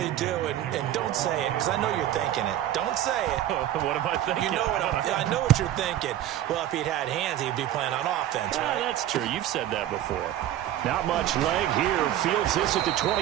do, and don't say it, because I know you're thinking it. Don't say it. What am I thinking? You know what I know what you're thinking. Well, if he'd had hands, he'd be playing on offense, right? That's true. You've said that before. Not much leg here. Fields this at the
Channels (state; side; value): quieter; left; 12.4 dB